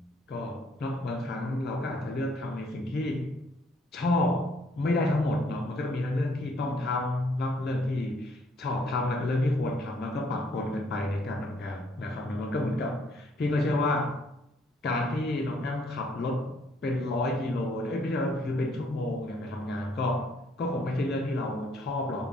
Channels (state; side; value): normal; both; correlation 0.66